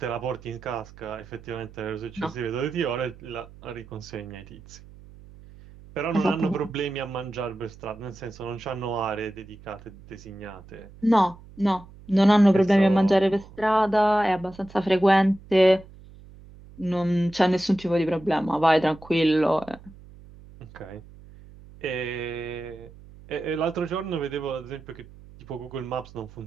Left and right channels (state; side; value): noise; right; hum, 20 dB below the sound